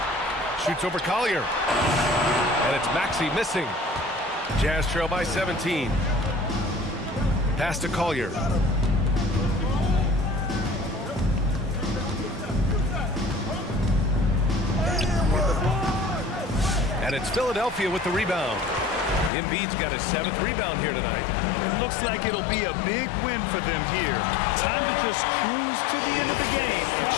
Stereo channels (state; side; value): drops out; right; at 19.3 s